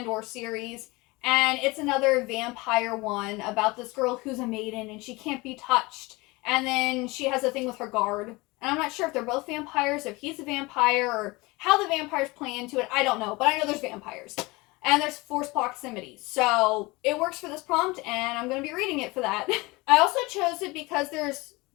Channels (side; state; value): right; quieter; 23.4 dB